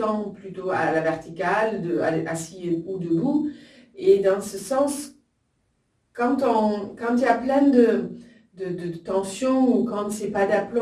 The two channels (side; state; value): both; identical; correlation 1.00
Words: plutôt à la verticale, assis ou debout. Et dans ce sens, quand il y a plein de tensions ou quand c'est pas